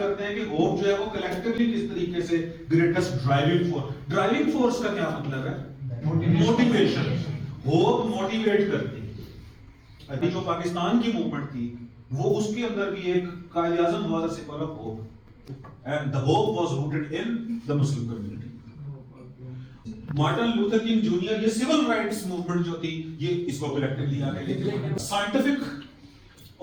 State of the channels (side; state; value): both; identical; correlation 1.00